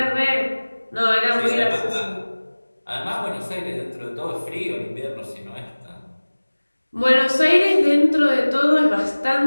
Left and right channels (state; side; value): inverted; both; correlation -1.00